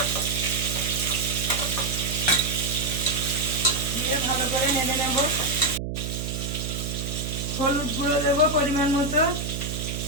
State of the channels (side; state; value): right; noise; hum, 4 dB below the sound